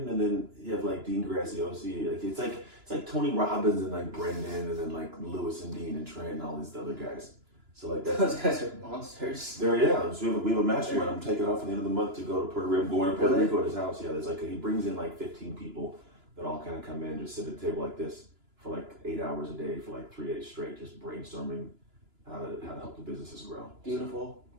and then you have like Dean Graziosi. Like it's like Tony Robbins and like Brendan, and then like Lewis and Dean and Trent and all these other guys. So like Those guys are monsters. So we have a mastermind. I'm taking off at the end of the month to go to Puerto Rico. I'm going to Puerto Rico at his house. Yeah, there's he brings in like 15 people that all kind of come in and just sit at a table like this for like 8 hours a day for like 3 days straight, just brainstorming how to help the businesses grow. Beautiful.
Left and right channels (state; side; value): late; left; 2.9 ms